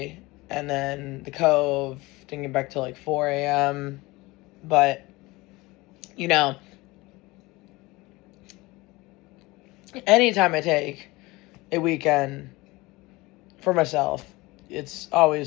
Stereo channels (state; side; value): quieter; right; 21.7 dB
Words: and then the Cove, didn't get back till like 4 a.m. But, you know, anytime I take a weekend for myself, it's